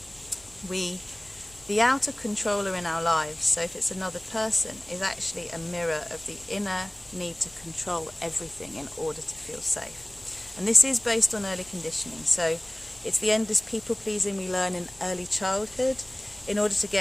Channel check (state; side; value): noise; left; rumble, 26 dB below the sound